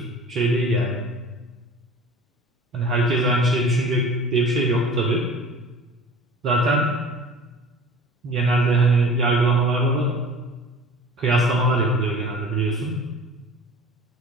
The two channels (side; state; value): both; normal; correlation 0.42